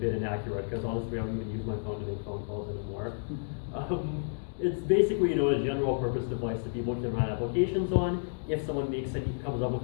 inaccurate, because honestly I don't even use my phone to make phone calls anymore. It's basically, a general purpose device that people can run applications on. If someone comes up with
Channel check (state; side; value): silent; right; digital silence